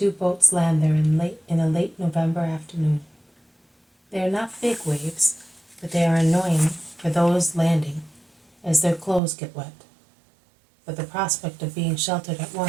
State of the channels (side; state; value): left; drops out; at 9.2 s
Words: boats land there in a late November afternoon. They are not big waves, but they are annoying for those landing, as their clothes get wet. But the prospect of being sheltered at